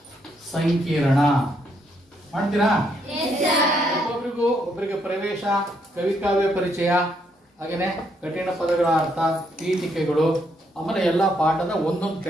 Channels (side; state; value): both; normal; correlation 0.74